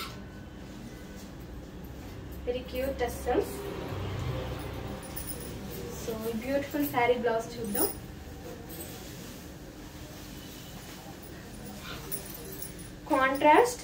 very cute tassels. So beautiful sari blouse చూద్దాం.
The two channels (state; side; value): identical; both; correlation 1.00